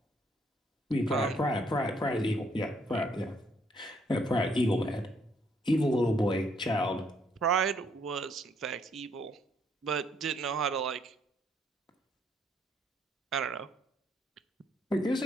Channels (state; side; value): normal; both; correlation 0.69